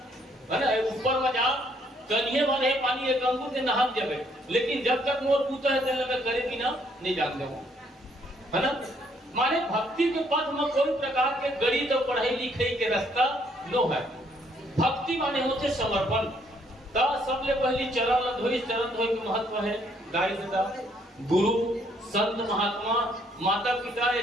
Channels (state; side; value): normal; both; correlation 0.68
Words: है ना। ऊपर में जाओ कन्हे वाले पानी एक अंगूर के नहा जावे, लेकिन जब तक मोर पूता है तेल में करे बिना नहीं जानते हो, है ना। माने भक्ति के पथ में कोई प्रकार के गणित और पढ़ाई लिखाई के रास्ता नो है। भक्ति माने होते समर्पण। ता सबले पहली चरण धोई, चरण धोई के महत्व है गाय दादा गुरु संत महात्मा माता पिता ये